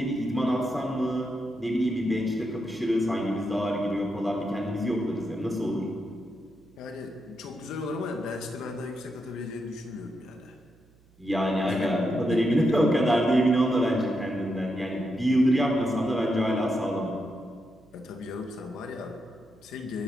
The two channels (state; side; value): noise; right; hum, 30 dB below the sound